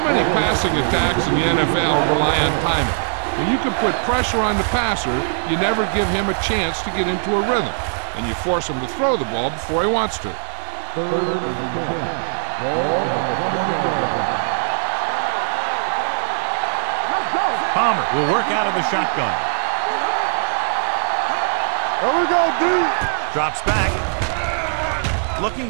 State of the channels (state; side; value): silent; left; 66 dB below the other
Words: many passing attacks in the NFL rely on timing. When you can put pressure on the passer, you never give him a chance to get into a rhythm, and you force him to throw the ball before he wants to. Third and 10. Ball on the 20-yard line. Turn over. Let's go. Palmer will work out of the shotgun. There we go, D. Drops back. Looking